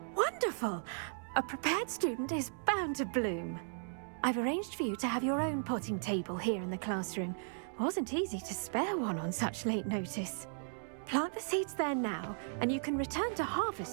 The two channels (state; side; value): silent; left; digital silence